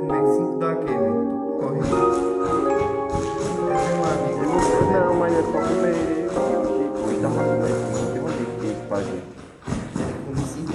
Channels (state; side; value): identical; both; correlation 1.00